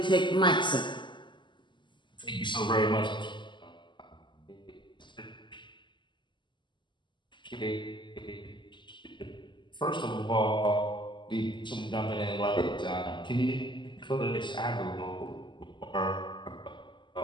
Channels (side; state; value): right; late; 0.23 ms